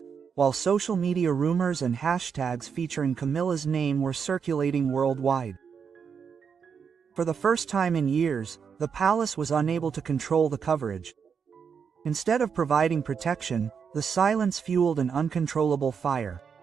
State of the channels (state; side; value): quieter; left; 6.6 dB